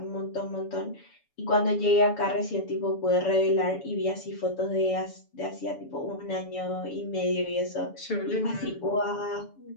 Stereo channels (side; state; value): right; late; 7.0 ms